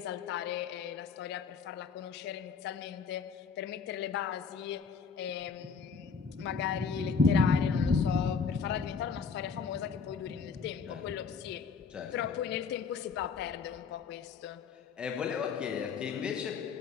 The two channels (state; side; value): quieter; right; 5.6 dB